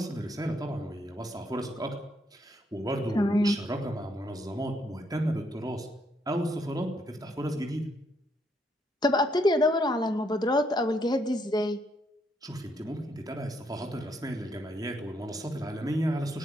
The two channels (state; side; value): normal; both; correlation 0.74